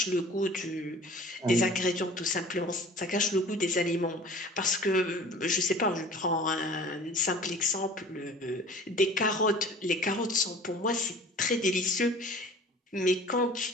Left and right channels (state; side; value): normal; both; correlation 0.45